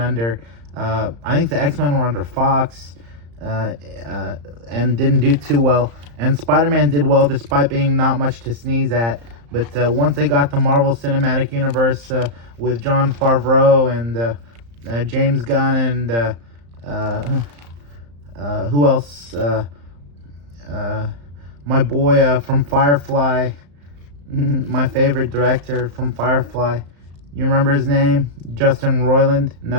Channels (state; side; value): late; left; 35 ms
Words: I think the X-Men were under Fox, and didn't do too well, and Spider-Man did well despite being not much to sneeze at. But once they got the Marvel Cinematic Universe with Jon Favreau and James Gunn and who else, my boy from Firefly, my favorite director from Firefly. You remember his name? Justin Roiland?